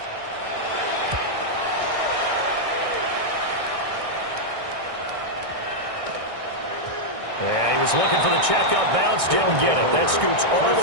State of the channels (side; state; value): left; late; 1.6 ms